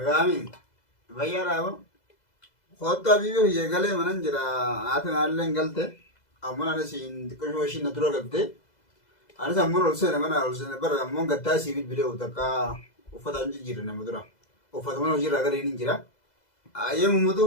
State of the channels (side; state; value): right; late; 2.0 ms